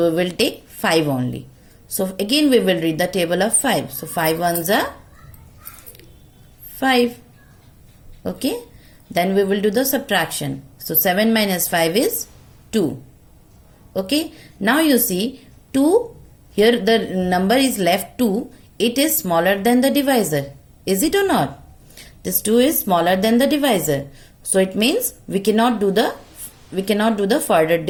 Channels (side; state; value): both; identical; correlation 1.00